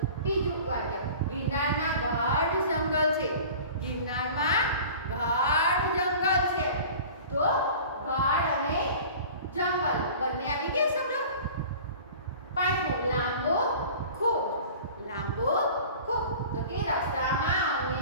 બીજું વાક્ય ગિરનારમાં ગાઢ જંગલ છે. ગિરનારમાં ગાઢ જંગલ છે. તો ગાઢ અને જંગલ બંને આવી ગયા શબ્દ. પાંચમું લાંબો ખૂબ. લાંબો ખૂબ. તો કે રસ્તામાં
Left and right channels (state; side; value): inverted; both; correlation -0.42